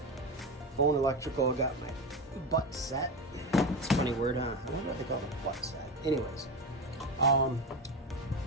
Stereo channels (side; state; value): both; normal; correlation 0.20